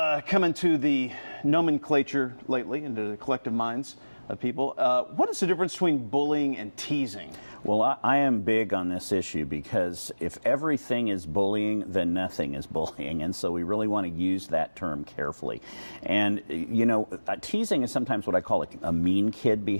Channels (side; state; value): both; inverted; correlation -1.00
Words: come into the nomenclature lately, into the collective minds of people. What is the difference between bullying and teasing? Well, I am big on this issue because if everything is bullying, then nothing is bullying. And so we really want to use that term carefully. And, you know, teasing is sometimes what I call a mean kid